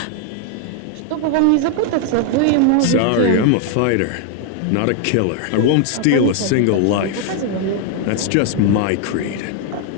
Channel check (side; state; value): both; different; correlation 0.00